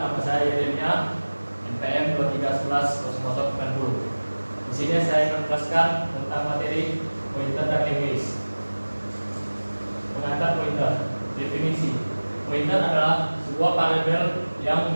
nama saya Yeremia, NPM 23110090. Di sini saya akan menjelaskan tentang materi pointer dan English. Pengantar pointer. Definisi. Pointer adalah sebuah variabel yang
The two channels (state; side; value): inverted; both; correlation -1.00